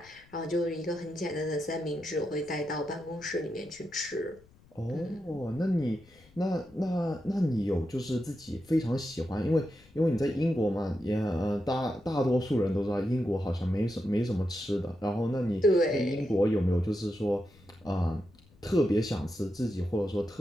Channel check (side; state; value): left; noise; rumble, 27 dB below the sound